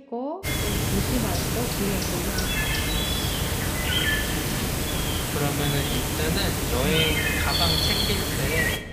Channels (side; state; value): both; identical; correlation 1.00